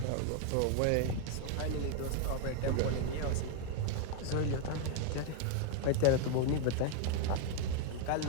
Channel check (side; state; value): both; different; correlation 0.00